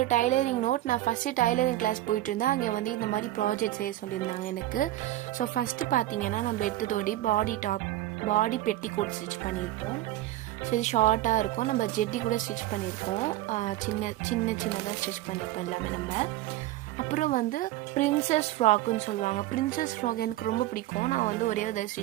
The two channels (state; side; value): quieter; left; 15.2 dB